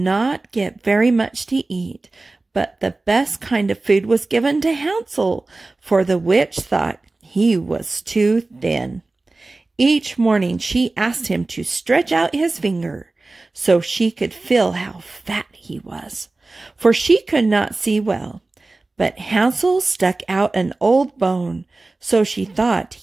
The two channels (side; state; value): left; quieter; 3.3 dB